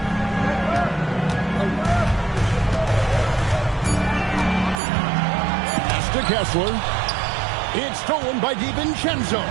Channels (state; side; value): drops out; left; at 4.8 s